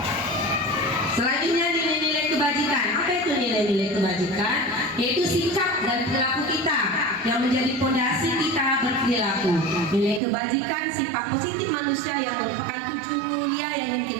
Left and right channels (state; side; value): drops out; left; at 10.2 s